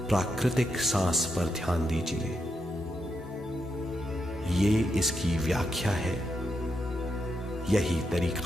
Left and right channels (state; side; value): normal; both; correlation 0.83